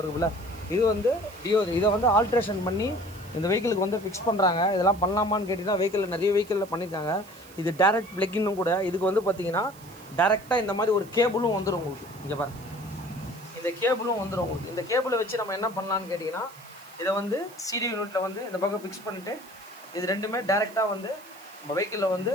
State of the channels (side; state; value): right; noise; hiss, 22 dB below the sound